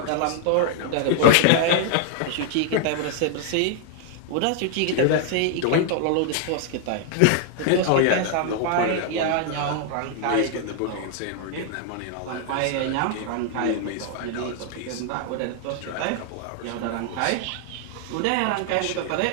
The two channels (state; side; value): different; both; correlation 0.00